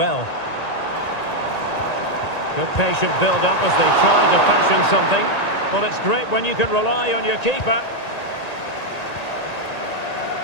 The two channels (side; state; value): right; late; 1.9 ms